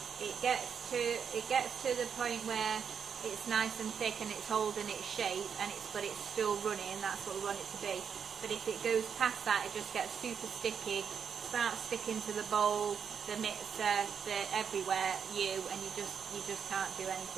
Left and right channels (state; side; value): quieter; left; 7.0 dB